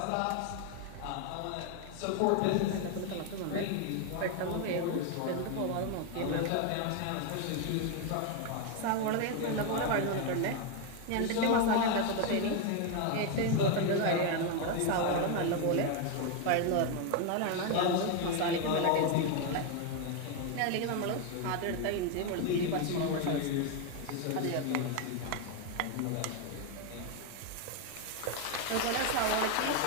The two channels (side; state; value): both; different; correlation 0.01